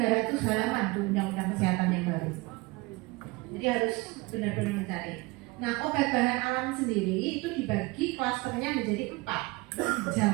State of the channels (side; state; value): left; quieter; 23.9 dB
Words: 300 halaman tuh Undang-Undang Kesehatan yang baru. Jadi harus benar-benar mencari. Nah, obat bahan alam sendiri itu dibagi klasternya menjadi 4.